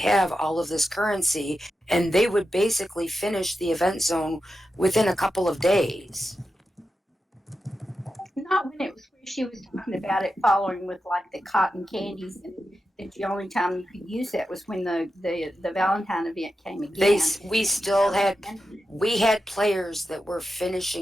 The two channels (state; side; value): normal; both; correlation 0.90